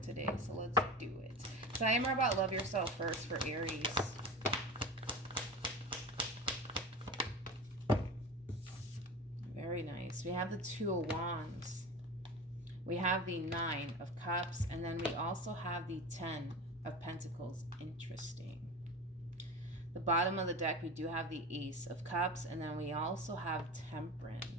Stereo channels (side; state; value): both; normal; correlation 0.30